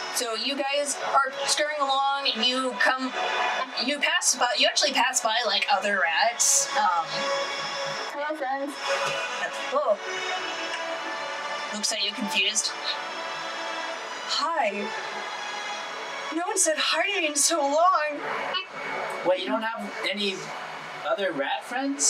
So you guys are scurrying along, and you actually pass by like other rats. Hello, friends. Oh. Looks like you're confused. Hi. No one said hi to me in so long. Wait, you don't have any other rat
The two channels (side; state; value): both; identical; correlation 1.00